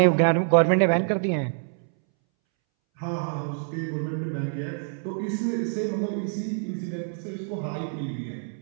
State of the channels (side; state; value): left; silent; 61 dB below the other